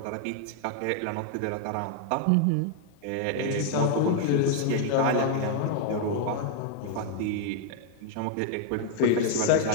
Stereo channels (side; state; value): both; different; correlation 0.00